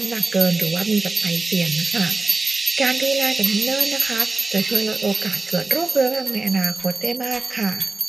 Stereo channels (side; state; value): left; quieter; 3.6 dB